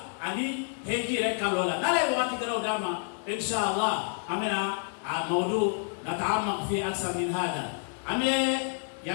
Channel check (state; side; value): silent; right; 56 dB below the other